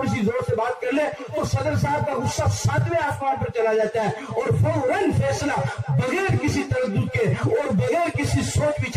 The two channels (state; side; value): identical; both; correlation 1.00